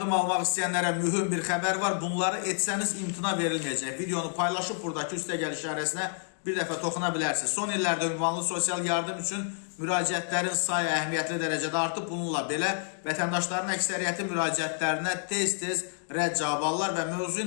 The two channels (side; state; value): right; silent; 59 dB below the other